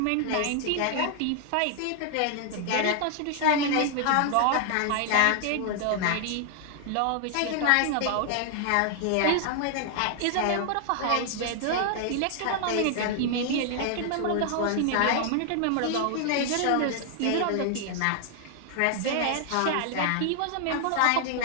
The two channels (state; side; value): different; both; correlation 0.00